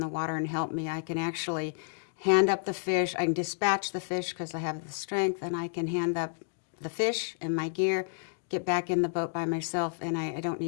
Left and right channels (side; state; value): right; silent; digital silence